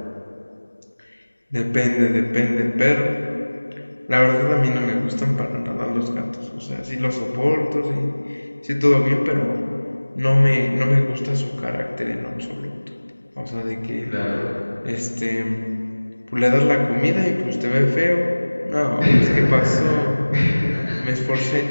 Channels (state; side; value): inverted; both; correlation -1.00